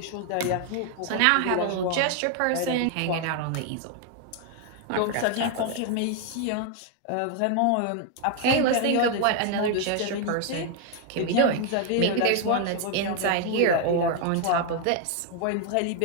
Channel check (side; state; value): both; different; correlation 0.00